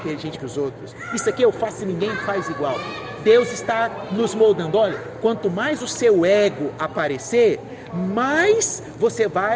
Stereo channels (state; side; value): identical; both; correlation 1.00